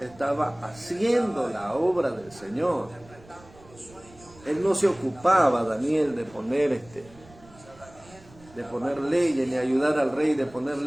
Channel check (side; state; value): right; noise; rumble, 24 dB below the sound